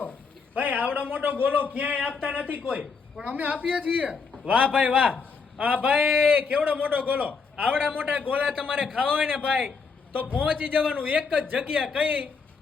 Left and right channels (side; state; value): right; quieter; 5.0 dB